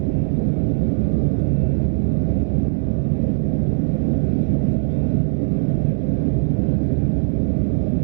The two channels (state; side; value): silent; left; 65 dB below the other